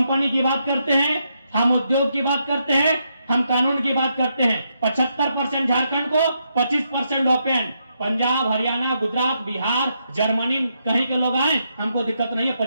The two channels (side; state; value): both; inverted; correlation -0.80